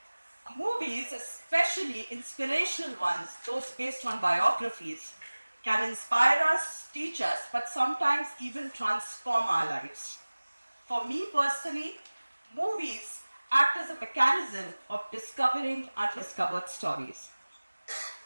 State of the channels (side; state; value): both; inverted; correlation -1.00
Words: Movies, especially inspirational ones, those based on biographies, can inspire us, teach us, but sometimes even transform our lives. For me personally, movies act as a mechanism of discovering undiscovered stories.